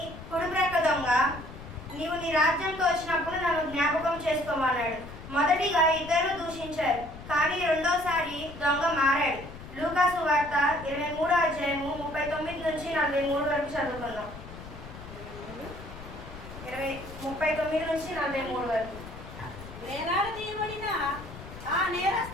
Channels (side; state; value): left; noise; rumble, 14 dB below the sound